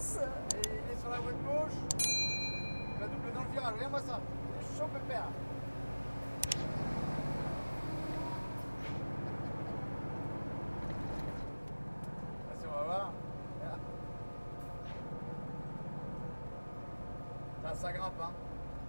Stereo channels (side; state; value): both; inverted; correlation -1.00